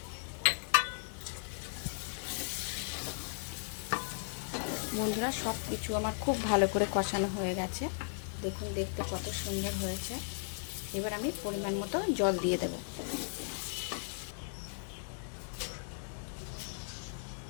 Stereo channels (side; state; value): right; silent; digital silence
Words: বন্ধুরা, সব কিছু আমার খুব ভালো করে কষানো হয়ে গেছে। দেখুন, দেখতে কত সুন্দর হয়েছে। এবার আমি পরিমাণ মতো জল দিয়ে দেব।